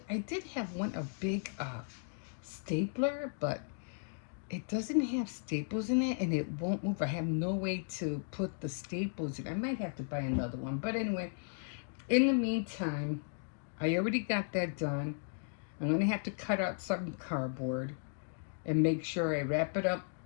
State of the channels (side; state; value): right; silent; digital silence